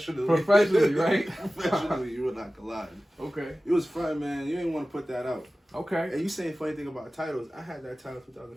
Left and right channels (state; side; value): normal; both; correlation 0.96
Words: right? Professionally, you and I collide. Okay. It was fun, man. You didn't want to put that out. Okay. And you saying funny thing about titles? I had that title